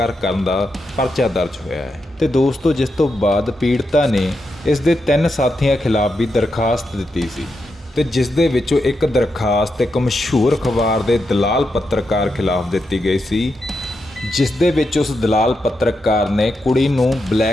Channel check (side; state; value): both; normal; correlation 0.85